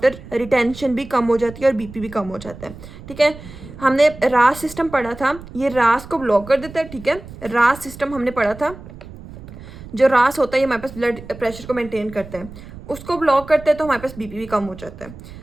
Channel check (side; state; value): right; noise; rumble, 16 dB below the sound